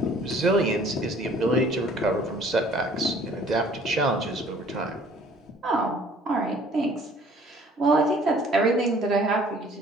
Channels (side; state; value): both; normal; correlation 0.55